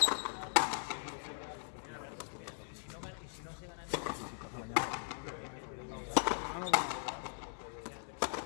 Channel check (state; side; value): silent; right; digital silence